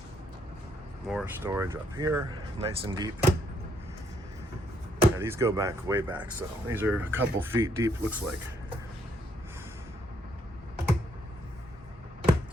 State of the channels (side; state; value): both; normal; correlation 0.72